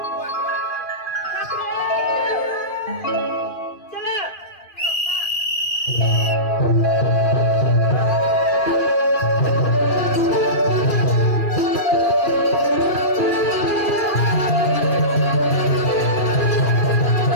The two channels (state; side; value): late; right; 2.9 ms